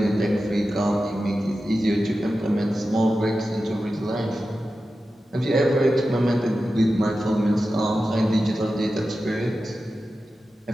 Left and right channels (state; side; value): normal; both; correlation 0.93